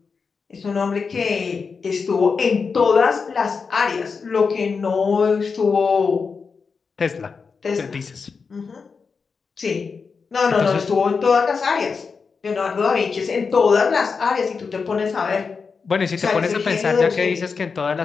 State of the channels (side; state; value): right; quieter; 5.2 dB